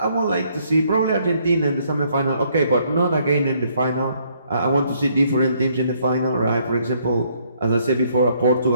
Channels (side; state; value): both; inverted; correlation -0.68